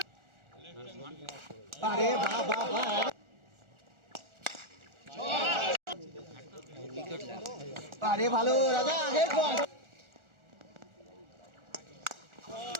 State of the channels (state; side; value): late; left; 1.4 ms